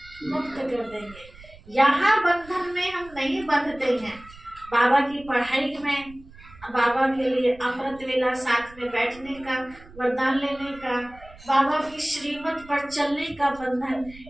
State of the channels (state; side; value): noise; right; rumble, 21 dB below the sound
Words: मुक्त कर देंगे। यहाँ बंधन में हम नहीं बंधते हैं। बाबा की पढ़ाई में, बाबा के लिए अमृत वेला साथ में बैठने का, वरदान लेने का, बाबा की श्रीमत पर चलने का बंधन,